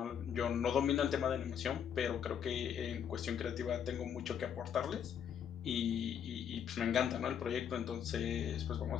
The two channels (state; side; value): quieter; right; 8.4 dB